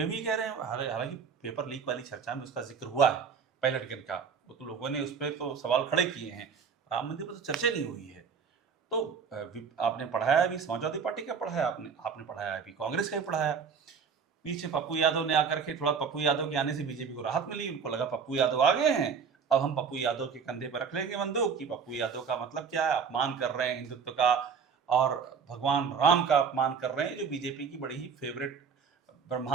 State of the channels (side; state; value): left; quieter; 6.2 dB